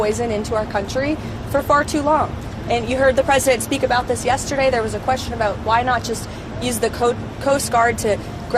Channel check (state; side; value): identical; both; correlation 1.00